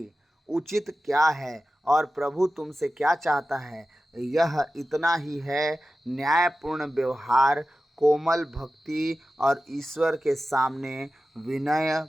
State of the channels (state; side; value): normal; both; correlation 0.94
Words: उचित क्या है और प्रभु तुमसे क्या चाहता है। यह इतना ही है, न्यायपूर्ण व्यवहार, कोमल भक्ति और ईश्वर के सामने